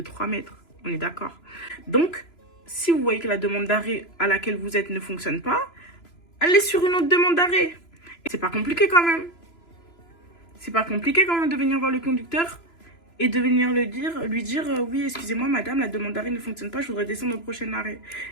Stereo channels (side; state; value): right; late; 3.0 ms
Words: mètres. On est d'accord. Donc, si vous voyez que la demande d'arrêt à laquelle vous êtes ne fonctionne pas, allez sur une autre demande d'arrêt. C'est pas compliqué quand même. C'est pas compliqué quand même de venir voir le conducteur et de venir lui dire oui, excusez-moi madame, la demande d'arrêt ne fonctionne pas, je voudrais descendre au prochain arrêt.